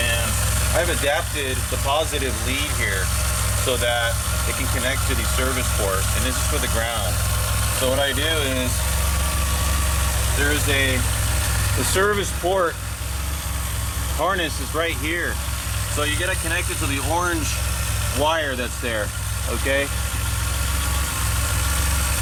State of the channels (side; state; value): both; identical; correlation 1.00